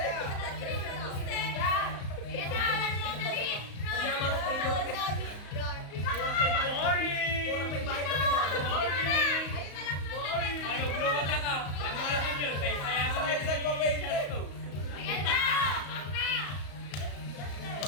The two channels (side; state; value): right; late; 34 ms